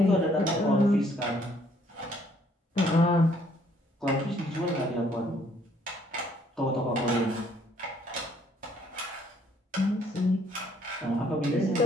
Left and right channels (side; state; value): both; normal; correlation 0.65